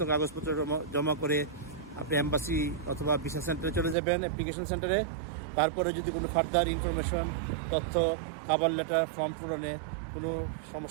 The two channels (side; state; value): left; drops out; at 4.0 s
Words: কাগজপত্র জমা করে আপনি এম্বাসি অথবা ভিসা সেন্টারে চলে যাবেন, অ্যাপ্লিকেশন সেন্টারে। তারপরে যদি কোনো ফার্দার ইনফরমেশন, তথ্য, খাবার লেটার, ফর্ম পূরণে কোনো